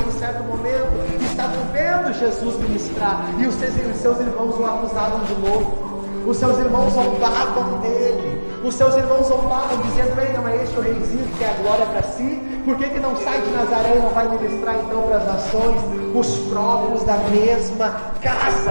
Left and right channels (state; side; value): inverted; both; correlation -1.00